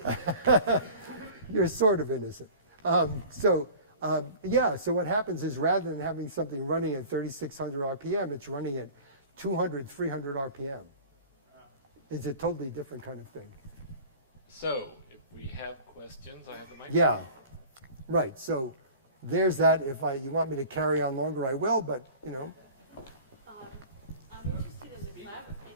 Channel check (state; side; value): inverted; both; correlation -0.41